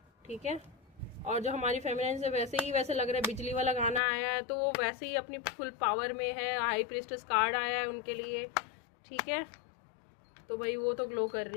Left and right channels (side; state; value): right; drops out; at 4.0 s